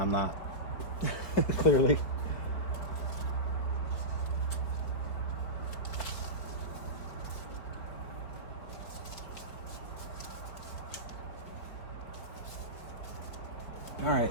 not. Clearly. All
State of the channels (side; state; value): right; late; 4.3 ms